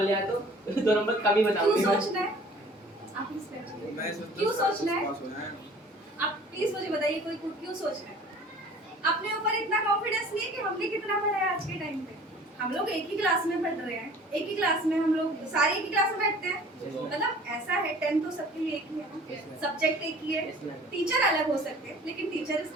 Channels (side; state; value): both; normal; correlation 0.48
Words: ले आया तो 2 नंबर कम ही क्यों बताऊंगी। सोचना है? आप प्लीज बैठिए। क्यों सोचना है? आप प्लीज मुझे बताइए कोई क्यों सोचना है? अपने ऊपर इतना कॉन्फिडेंस नहीं है कि हमने कितना पढ़ा है आज के टाइम पे। हम लोग एक ही क्लास में पढ़ रहे हैं, एक ही क्लास में हम लोग सारे एक ही क्लास में बैठते हैं। मतलब ऐसा है 10 तो सबके लिए एक ही है ना, सब्जेक्ट एक ही है, टीचर अलग हो सकते हैं लेकिन टीचर इज